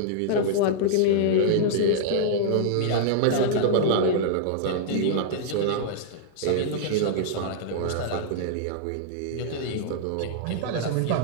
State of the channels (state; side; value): different; both; correlation -0.02